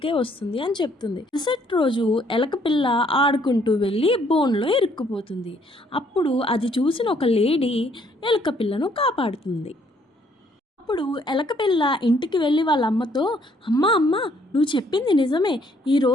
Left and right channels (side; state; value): both; normal; correlation 0.66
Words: వస్తుంది" అని చెప్తుంది. మరుసటి రోజు ఎలక పిల్ల ఆడుకుంటూ వెళ్ళి బోన్లో ఇరుక్కుపోతుంది. అప్పుడు అది చూసిన ఒక లేడీ ఎలక పిల్లను కాపాడుతుంది. అప్పుడు ఎలకపిల్ల ఇంటికి వెళ్ళి వాళ్ళ అమ్మతో, "అమ్మ అమ్మ, నువ్వు చెప్పింది నిజమే.